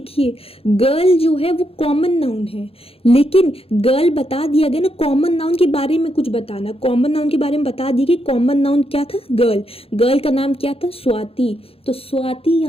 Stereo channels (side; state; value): right; late; 0.28 ms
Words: गर्ल जो है वो कॉमन नाउन है, लेकिन गर्ल बता दिया गया ना, कॉमन नाउन के बारे में कुछ बताना, कॉमन नाउन के बारे में बता दिया कि कॉमन नाउन क्या था, गर्ल, गर्ल का नाम क्या था, स्वाति, तो स्वाति